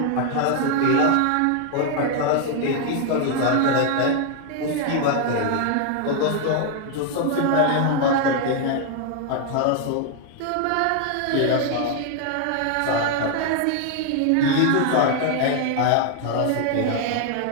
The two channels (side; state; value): both; different; correlation 0.00